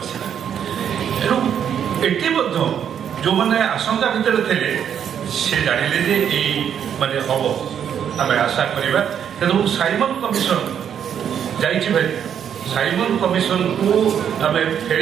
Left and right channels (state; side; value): quieter; left; 8.6 dB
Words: ତେଣୁ ଏଠି ମଧ୍ୟ ଯେଉଁମାନେ ଆଶଙ୍କା ଭିତରେ ଥିଲେ ସେ ଜାଣିଲେ ଯେ ଏଇ ମାନେ ହବ, ଆମେ ଆଶା କରିବା। ତେଣୁ ସାଇମନ କମିଶନ ଯାଇଛି ଭାଇ, ସାଇମନ କମିଶନକୁ ଆମେ